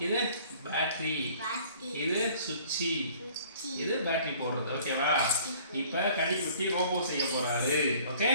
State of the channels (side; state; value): both; inverted; correlation -0.54